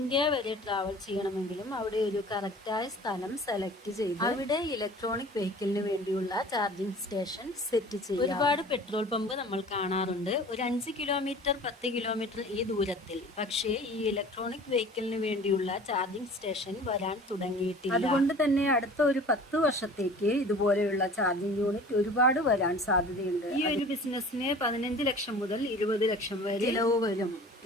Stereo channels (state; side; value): normal; both; correlation 0.44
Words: വരെ ട്രാവൽ ചെയ്യണമെങ്കിലും അവിടെ ഒരു കറക്റ്റായ സ്ഥലം സെലക്ട് ചെയ്ത് അവിടെ ഇലക്ട്രോണിക് വെഹിക്കിളിന് വേണ്ടിയുള്ള ചാർജിംഗ് സ്റ്റേഷൻ സെറ്റ് ചെയ്യും. ഒരുപാട് പെട്രോൾ പമ്പ് നമ്മൾ കാണാറുണ്ട്, ഒരു 5 കിലോമീറ്റർ 10 കിലോമീറ്റർ ഈ ദൂരത്തിൽ. പക്ഷേ ഈ ഇലക്ട്രോണിക് വെഹിക്കിളിന് വേണ്ടിയുള്ള ചാർജിംഗ് സ്റ്റേഷൻ വരാൻ തുടങ്ങിയിട്ടില്ല. അതുകൊണ്ട് തന്നെ അടുത്ത ഒരു 10 വർഷത്തേക്ക് ഇതുപോലെയുള്ള ചാർജിംഗ് യൂണിറ്റ് ഒരുപാട് വരാൻ സാധ്യതയുണ്ട്. ഈ ഒരു ബിസിനസ്സിന് 15 ലക്ഷം മുതൽ 20 ലക്ഷം വരെ ചിലവ് വരും.